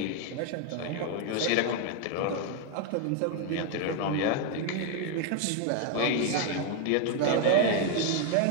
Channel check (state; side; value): different; both; correlation 0.00